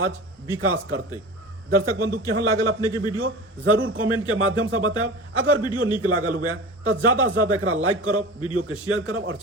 विकास करते दर्शक बंधु केहन लागल अपने के वीडियो जरूर कमेंट के माध्यम से बताएब अगर वीडियो निक लागल हुए तो ज्यादा से ज्यादा एकरा लाइक करब वीडियो के शेयर करब और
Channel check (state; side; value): normal; both; correlation 0.33